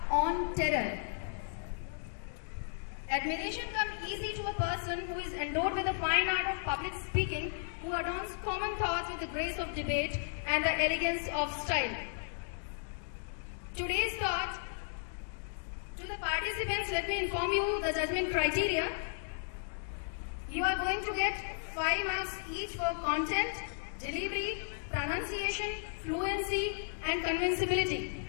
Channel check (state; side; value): silent; right; digital silence